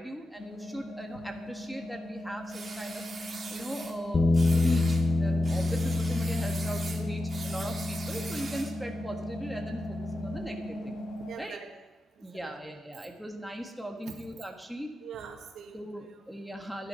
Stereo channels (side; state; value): both; normal; correlation 0.90